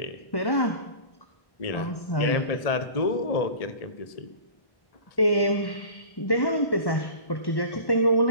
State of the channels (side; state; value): right; late; 1.1 ms